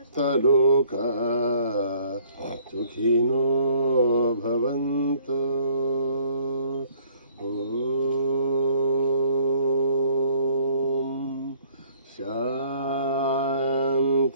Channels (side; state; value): both; inverted; correlation -0.59